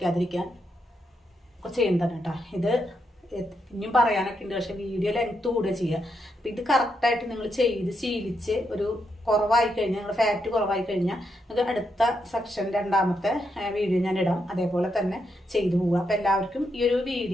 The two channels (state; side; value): normal; both; correlation 0.81